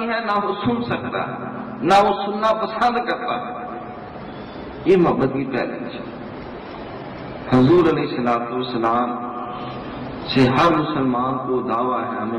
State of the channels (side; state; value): both; identical; correlation 1.00